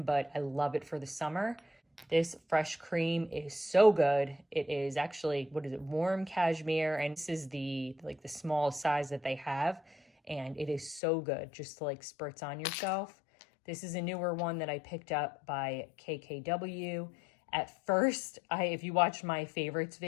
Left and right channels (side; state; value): right; drops out; at 11.0 s